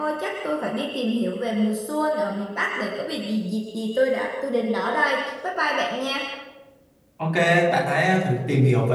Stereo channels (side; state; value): both; identical; correlation 1.00